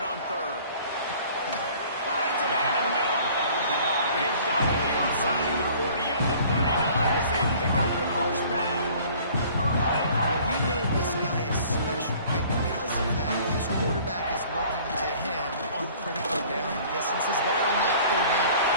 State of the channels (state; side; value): inverted; both; correlation -0.51